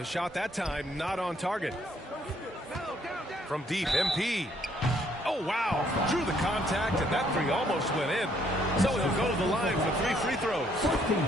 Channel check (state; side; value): normal; both; correlation 0.67